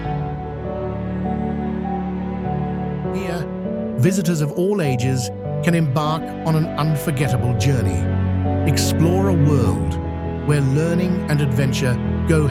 Here, visitors of all ages can embark on an unforgettable journey, explore a world where learning and adventure go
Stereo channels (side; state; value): both; identical; correlation 1.00